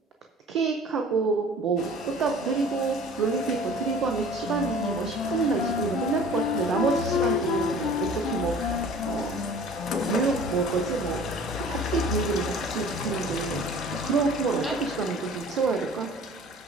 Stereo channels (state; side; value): normal; both; correlation 0.46